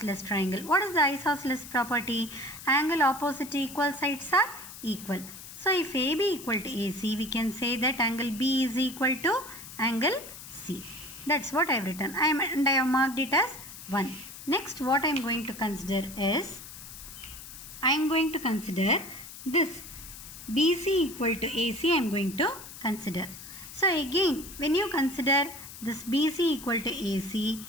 triangle. What is the isosceles property? Angle opposite to equal sides are equal. So if AB equal to AC, we can say that angle B is equal to angle C. That's what I have written. I have marked it as 1. Next, what I am going to consider is, I am going to consider this BC equal to AC. I am going to consider. So again, when you consider this BC equal to AC,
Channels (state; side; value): noise; left; hiss, 14 dB below the sound